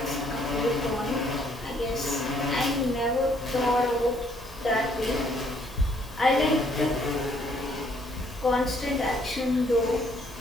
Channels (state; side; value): normal; both; correlation 0.66